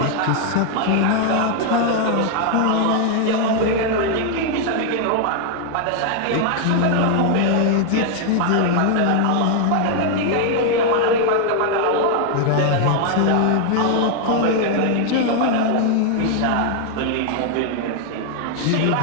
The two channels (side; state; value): both; different; correlation 0.00